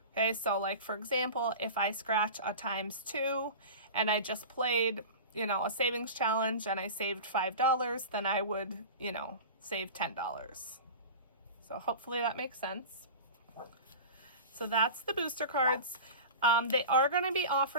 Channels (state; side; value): inverted; both; correlation -0.32